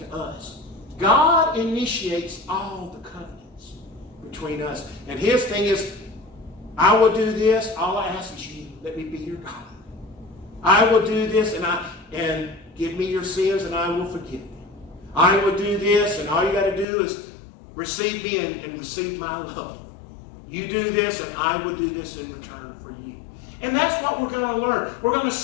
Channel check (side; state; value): right; drops out; at 16.9 s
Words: us. God initiates all the covenants between us. And his thing is, I will do this. All I ask is you, let me be your God. I will do this and give me your sins and I will forgive them. I will do this, and all you got to do is receive me and receive my love. You do this, and I will do this in return for you. And that's what we're going to learn. We're going to